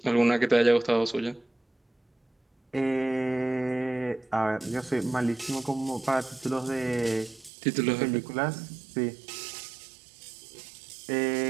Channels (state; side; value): drops out; left; at 7.5 s